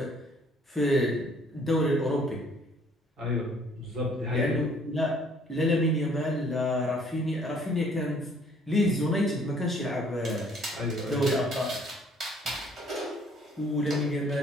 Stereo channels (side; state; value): both; normal; correlation 0.60